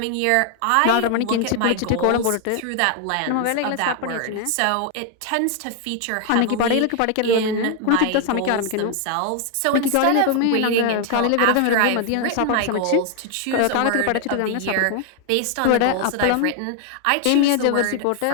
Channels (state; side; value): different; both; correlation 0.00